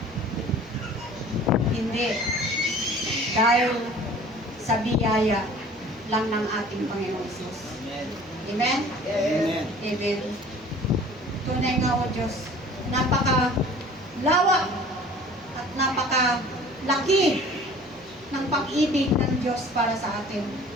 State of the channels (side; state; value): right; noise; hum, 26 dB below the sound